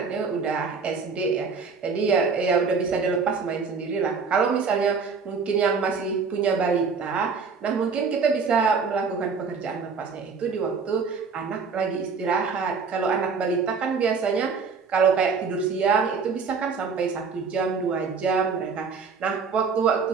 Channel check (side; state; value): left; quieter; 5.2 dB